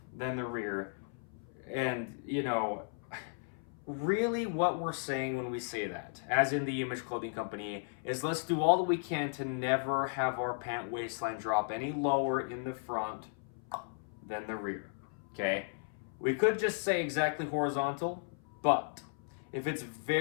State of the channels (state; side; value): silent; right; 54 dB below the other